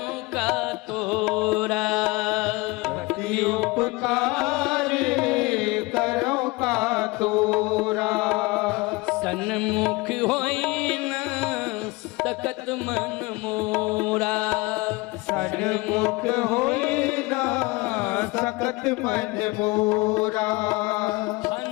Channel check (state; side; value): quieter; right; 23.5 dB